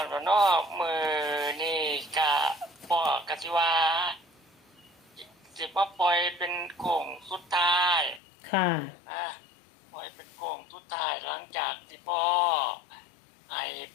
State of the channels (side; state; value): right; drops out; at 8.2 s